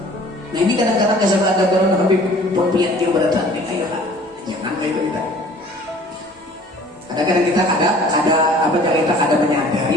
Nah ini kadang-kadang kesal ada orang Habib pempiat dia berdatang, ayo jangan kayak itu kita. Kadang-kadang kita ada menyadari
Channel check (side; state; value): both; normal; correlation 0.51